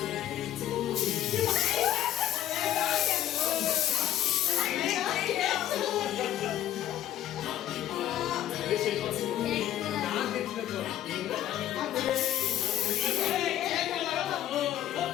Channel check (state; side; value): quieter; right; 12.3 dB